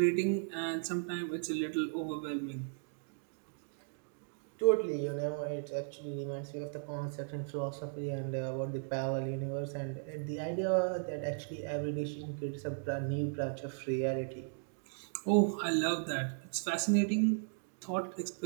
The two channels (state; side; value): silent; left; digital silence